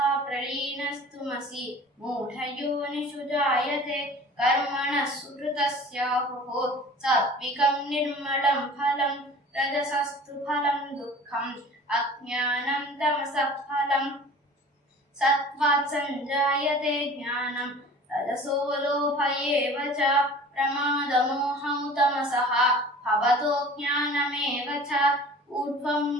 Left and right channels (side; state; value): both; normal; correlation 0.44